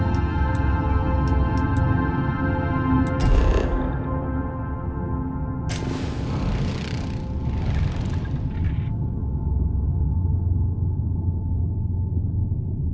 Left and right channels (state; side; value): identical; both; correlation 1.00